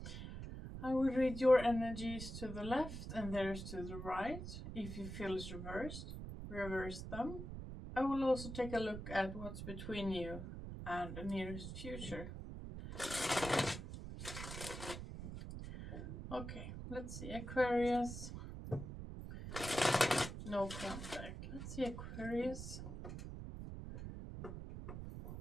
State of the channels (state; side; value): noise; right; rumble, 8 dB below the sound